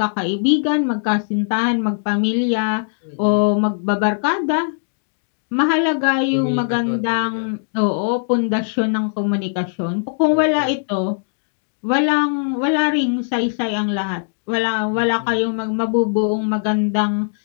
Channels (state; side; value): silent; right; digital silence